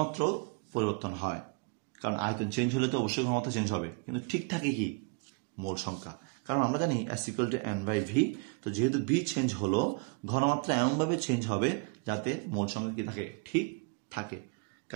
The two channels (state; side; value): quieter; left; 32.3 dB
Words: পরিবর্তন হয়। কারণ আয়তন চেঞ্জ হলে তো অবশ্যই ঘনমাত্রা চেঞ্জ হবে, কিন্তু ঠিক থাকে কি? মোল সংখ্যা। কারণ আমরা জানি S = N/V। তো যেহেতু V চেঞ্জ হলো, ঘনমাত্রা এমনভাবে চেঞ্জ হবে যাতে মোল সংখ্যা কী থাকে? ঠিক থাকে।